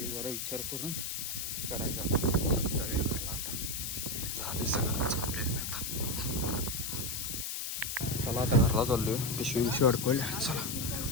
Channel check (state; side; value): noise; left; hiss, 3 dB below the sound